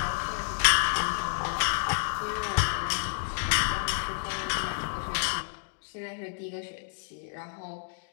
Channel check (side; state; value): right; silent; digital silence